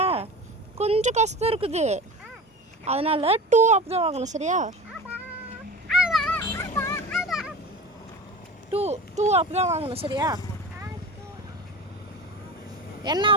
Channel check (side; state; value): both; normal; correlation 0.32